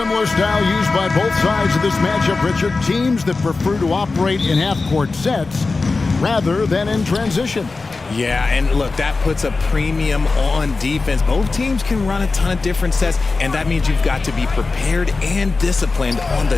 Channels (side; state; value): right; quieter; 3.9 dB